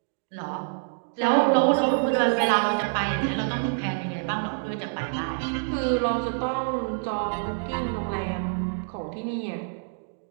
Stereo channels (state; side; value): silent; left; digital silence